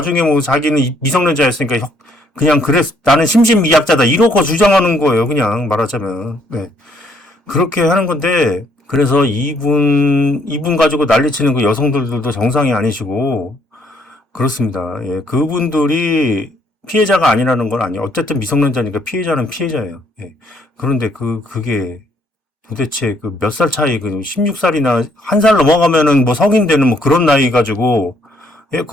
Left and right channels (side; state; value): both; normal; correlation 0.67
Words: 자기는 미성년자였으니까 그냥 나는 심신미약자다. 이러고 주장하는 거예요. 그냥 말하자면. 네. 그렇게 하는 건데, 그래서 이분 가지고 난리치는 그 여성들도 정상이 아니시고, 그렇습니다. 예. 그분들이 피해자가 아니라는 건 아니에요. 어쨌든 미성년자니까 피해자는 피해자예요. 예. 그런데 그게 도대체 몇 살 차이, 16살이나 1살 넘어가면은 성인 되는 그런 나이 가지고, 예,